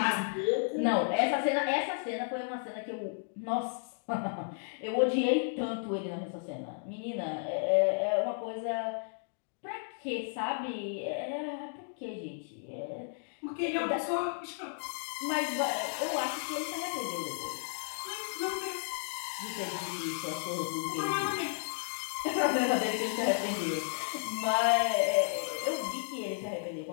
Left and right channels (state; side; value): silent; right; digital silence